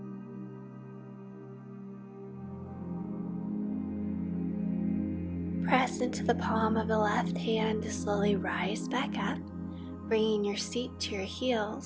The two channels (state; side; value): identical; both; correlation 1.00